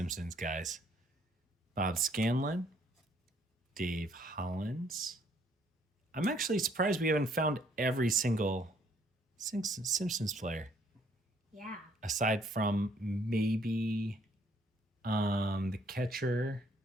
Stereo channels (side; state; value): both; normal; correlation 0.65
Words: guys. Bob Scanlon, Dave Hollins. I'm actually surprised we haven't found every single Simpsons player. Yeah. Aside from maybe the catcher.